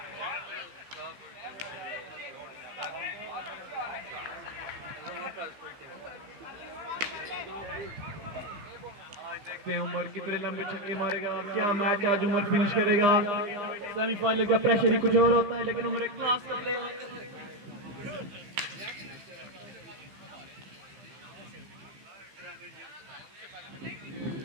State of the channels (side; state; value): left; late; 15 ms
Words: देखते हैं उमर कितने लंबे छक्के मारेगा, क्या मैच आज उमर फिनिश करेगा। सेमीफाइनल का प्रेशर ही कुछ और होता है, लेकिन उमर एक क्लास का प्लेयर है।